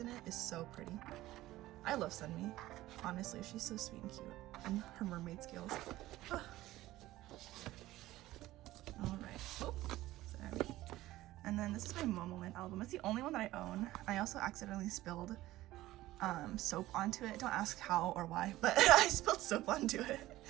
it, is so pretty. I love Sunmi. Honestly, she's so sweet and cute. And her mermaid scales. Alright. Oh, sorry. And then this is my Momoland album. It's the only one that I own. I also accidentally spilled soap onto it. Don't ask how or why, but I spilled soap onto it.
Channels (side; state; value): left; quieter; 16.3 dB